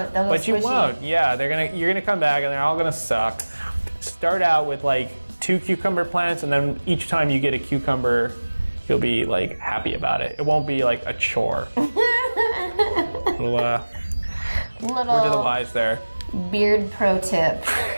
They'll go But you squishy. won't. Yeah, you're gonna come back and they're all gonna suck. Start out with like 2 cucumber plants, and then each time you get a cucumber, you'll be like happy about it. It won't be like a chore. Little word to the wise there. Beard pro tip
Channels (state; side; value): inverted; both; correlation -1.00